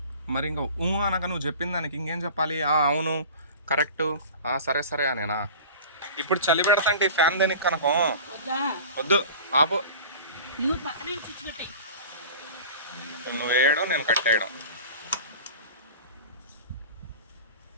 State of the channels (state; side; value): inverted; both; correlation -0.38